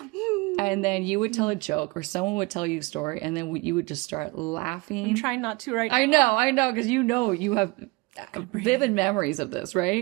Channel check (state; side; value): quieter; left; 25.6 dB